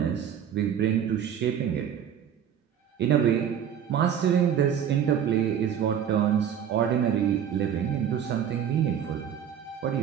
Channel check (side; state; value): left; quieter; 9.0 dB